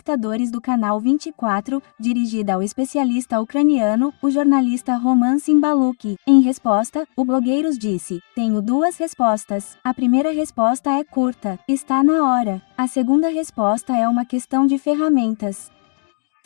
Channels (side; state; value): right; silent; digital silence